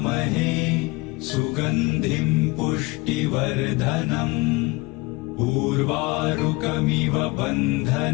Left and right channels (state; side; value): quieter; right; 24.1 dB